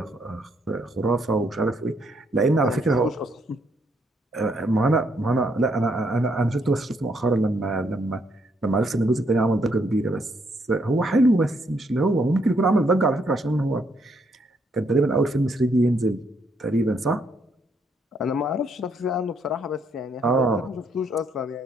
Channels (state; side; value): normal; both; correlation 0.73